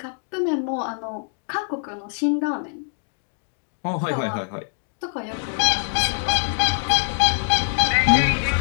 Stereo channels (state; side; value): silent; right; 63 dB below the other